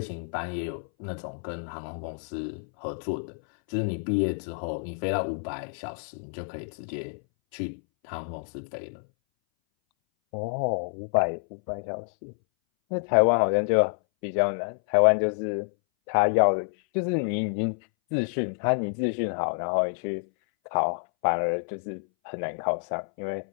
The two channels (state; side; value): silent; right; 59 dB below the other